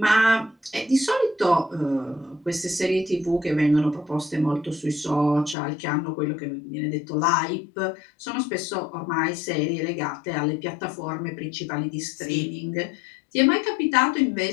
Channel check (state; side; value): drops out; right; at 5.6 s